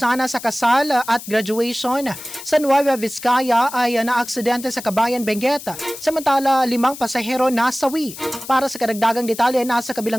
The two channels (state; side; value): noise; left; hiss, 13 dB below the sound